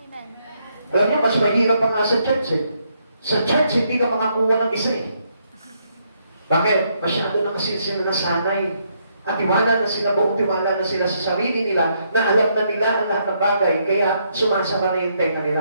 Amen. Alam niyo, mas mahirap pa nga sa church eh. Sa church, hindi ka makakuha ng isa eh. Bakit? Masyado na kasi sila nasanay. At tiwala na sila, buong tiwala na sila sa sarili nila, na alam na nila ang lahat ng bagay, kaya sumasama na yung tenga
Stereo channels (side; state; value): both; inverted; correlation -0.75